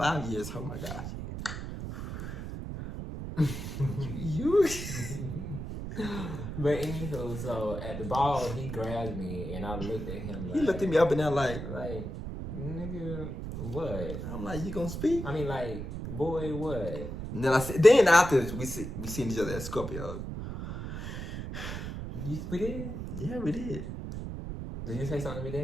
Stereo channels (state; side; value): noise; right; rumble, 6 dB below the sound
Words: years. Oh my gosh. you. But anywho, so at the ball, he grabbed me and I looked at him like. He looked at me up and down like, nigga, what? I'm like, you gonna speak? I mean, like, boy, what? And then after we seen each other at Scorpio. We did? Yeah, we did. Did you say something to me